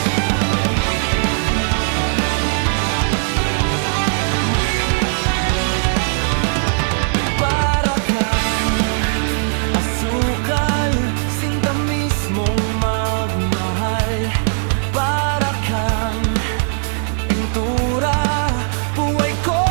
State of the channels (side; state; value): left; silent; digital silence